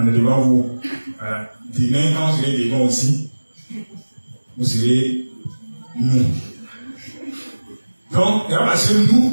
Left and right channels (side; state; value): both; inverted; correlation -1.00